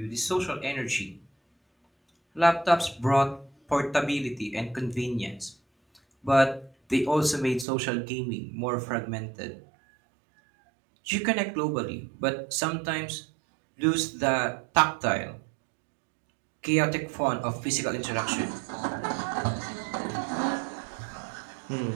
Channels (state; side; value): drops out; left; at 7.7 s